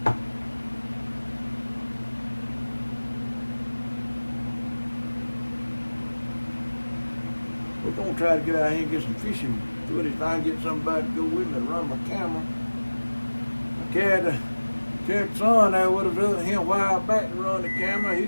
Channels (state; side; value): inverted; both; correlation -1.00